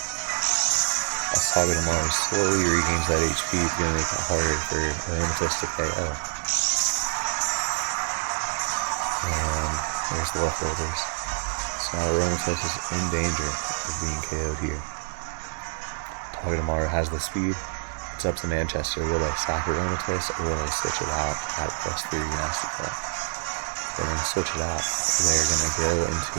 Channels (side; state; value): left; silent; 61 dB below the other